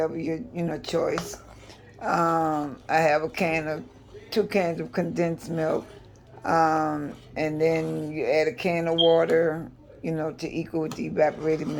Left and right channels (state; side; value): identical; both; correlation 1.00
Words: your choice. I have 2 cans of condensed milk, and then you add a can of water, to equal with the evaporated